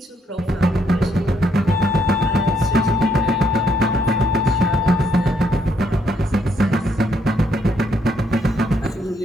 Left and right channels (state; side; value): normal; both; correlation 0.73